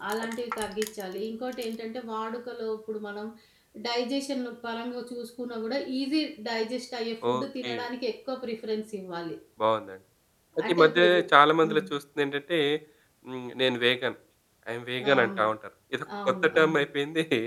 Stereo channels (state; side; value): identical; both; correlation 1.00